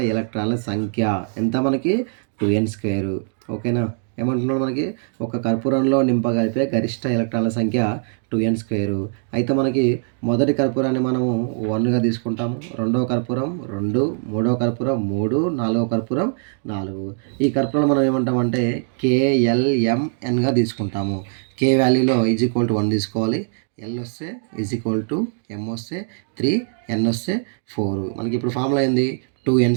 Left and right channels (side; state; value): left; silent; digital silence